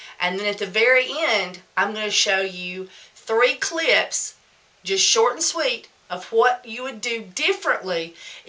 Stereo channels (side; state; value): both; identical; correlation 1.00